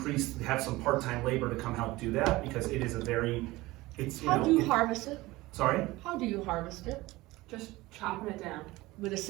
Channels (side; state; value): left; quieter; 19.7 dB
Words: have some part-time labor to come help do that, because it is How do you harvest it? Sorry? How do you harvest it? Just chopping it down. With a